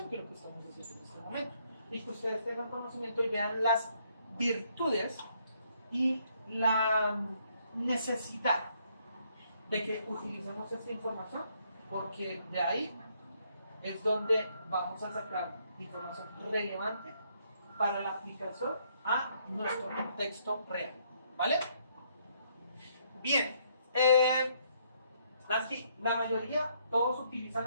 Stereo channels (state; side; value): inverted; both; correlation -0.70